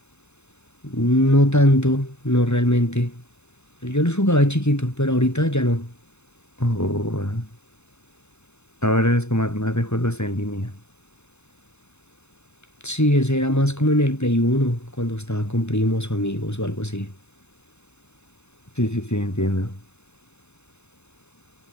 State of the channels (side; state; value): right; late; 0.82 ms